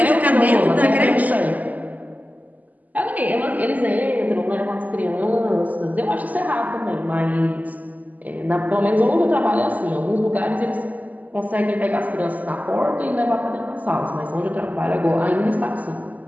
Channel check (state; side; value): late; left; 0.078 ms